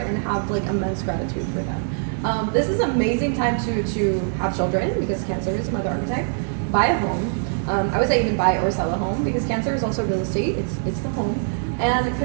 and have like immense gratitude for them. This is an amazing time to have children because Cancer is a mother archetype. Buy a home. I would say even buy or sell a home because Cancer is also real estate. It's the home and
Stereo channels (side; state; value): left; silent; digital silence